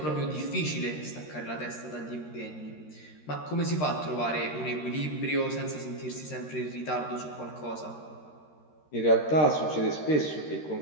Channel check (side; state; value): right; late; 13 ms